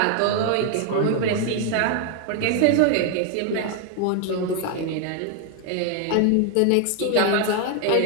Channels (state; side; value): different; both; correlation 0.00